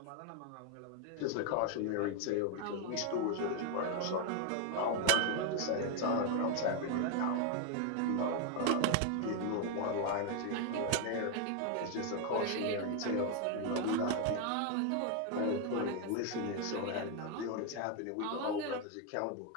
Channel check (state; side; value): different; both; correlation 0.01